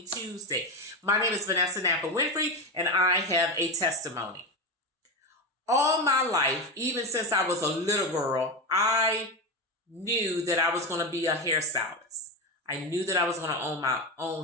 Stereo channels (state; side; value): normal; both; correlation 0.16